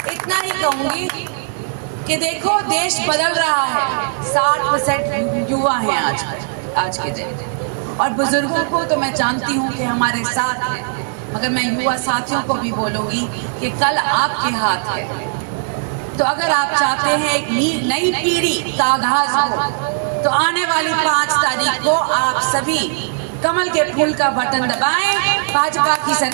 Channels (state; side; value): silent; left; digital silence